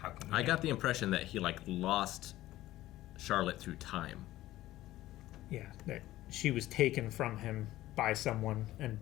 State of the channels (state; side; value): quieter; right; 15.5 dB